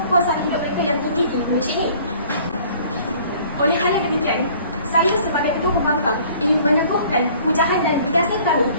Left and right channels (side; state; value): both; inverted; correlation -0.53